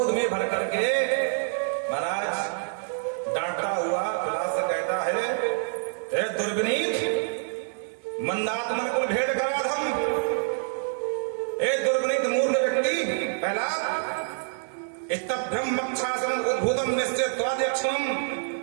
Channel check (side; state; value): left; silent; 60 dB below the other